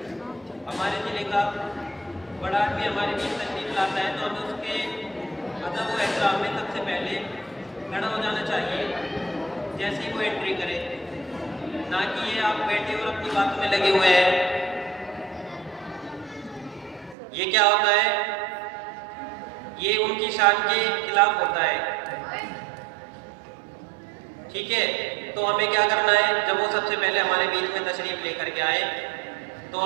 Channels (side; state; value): left; drops out; at 17.2 s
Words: हमारे ज़िले का बड़ा आदमी हमारे बीच तशरीफ लाता है तो हमें उसके अदब व एहतराम में सबसे पहले खड़ा हो जाना चाहिए जैसे ही वो एंट्री करे, ना कि ये आप बैठे और अपनी बातों में लगे हुए हैं। ये क्या होता है, ये उनकी शान के खिलाफ होता है, ठीक है। तो हमें क्या करना है, जब वो सबसे पहले हमारे बीच में तशरीफ लेकर के आए तो